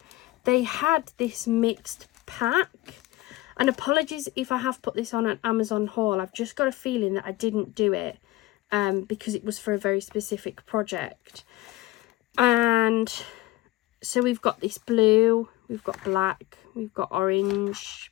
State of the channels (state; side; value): quieter; right; 18.1 dB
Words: they had this mixed pack. And apologies if I have put this on an Amazon haul. I've just got a feeling that I didn't do it because it was for a very specific project. And so we've got this blue, we've got black, we've got orange,